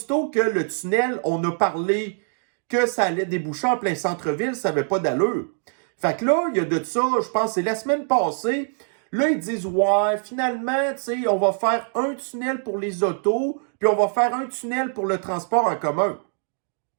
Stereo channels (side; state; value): left; silent; 62 dB below the other